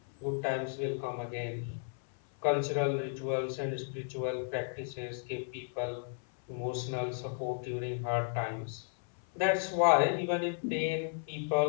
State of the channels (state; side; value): silent; right; 55 dB below the other